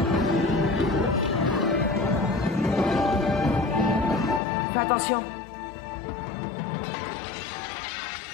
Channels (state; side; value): drops out; right; at 4.4 s